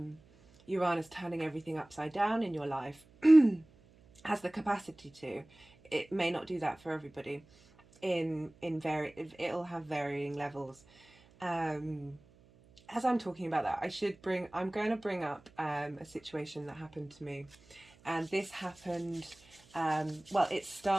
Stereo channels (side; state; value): right; noise; hum, 28 dB below the sound